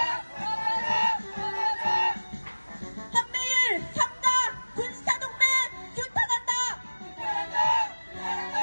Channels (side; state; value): both; inverted; correlation -1.00